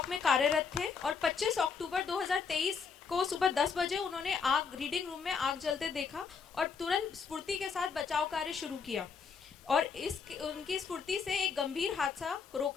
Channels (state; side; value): quieter; right; 5.8 dB